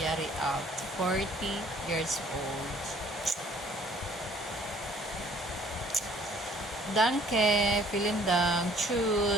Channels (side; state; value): both; normal; correlation 0.57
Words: alt, 40 years old. Danke, vielen Dank,